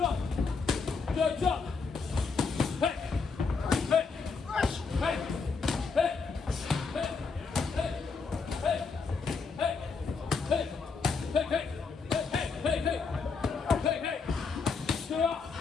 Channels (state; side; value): quieter; right; 4.9 dB